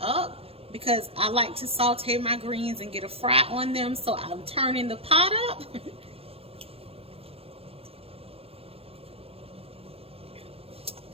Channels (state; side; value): late; left; 0.28 ms